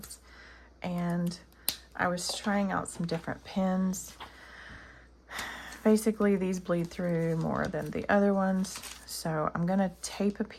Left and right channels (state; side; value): identical; both; correlation 1.00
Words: and I was trying out some different pens. Basically, these bleed through more than the other ones, so I'm going to tape a